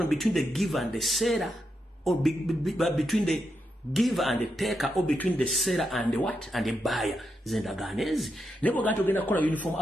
between the giver and the seller or between the giver and the taker or between the seller and the what? And the buyer. Zendaganezi. Nebo gato genda kola uniform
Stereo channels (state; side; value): normal; both; correlation 0.84